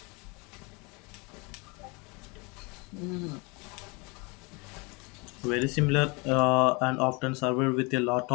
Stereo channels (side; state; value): right; quieter; 28.8 dB